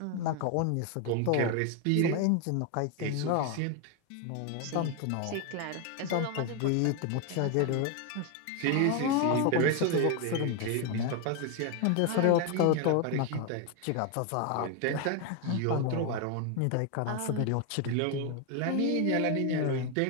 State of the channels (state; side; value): different; both; correlation 0.01